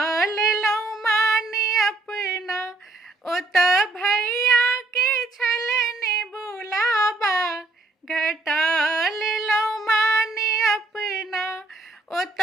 लेलहुँ मान अपना। ओतऽ भैया के छलनि बुलाबा, घटा लेलहुँ मान अपना।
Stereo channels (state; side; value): quieter; left; 3.1 dB